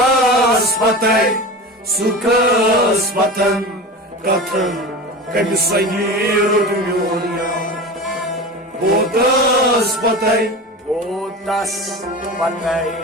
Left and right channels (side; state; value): both; normal; correlation 0.30